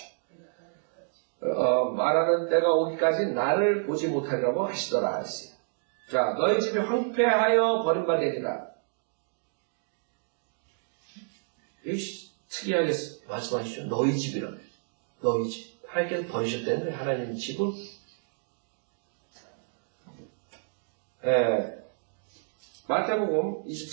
말하는 때가 오기까지 나를 보지 못하리라고 하시더라 했어요. 자, 너희 집이 황폐하여 버림바 되리라. 특이하게 말씀하시죠. 너희 집이라며. 너희 집. 하나님께서 버리셨다는 거예요. 하나님 집을. 마태복음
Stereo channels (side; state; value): left; silent; digital silence